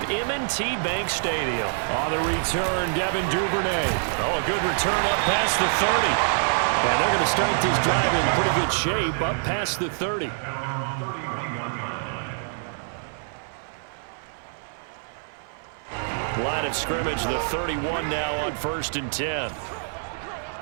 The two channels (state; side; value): silent; left; 56 dB below the other